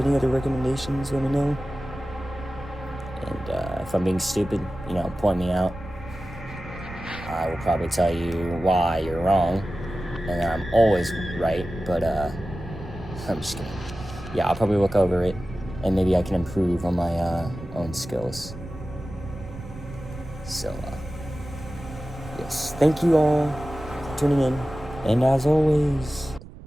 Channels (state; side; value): noise; right; rumble, 16 dB below the sound